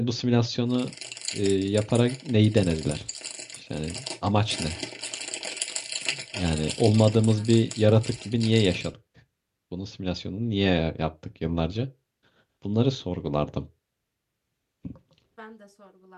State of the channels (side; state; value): both; identical; correlation 1.00